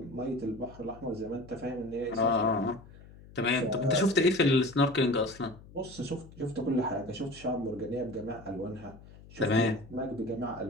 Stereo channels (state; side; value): noise; left; hum, 20 dB below the sound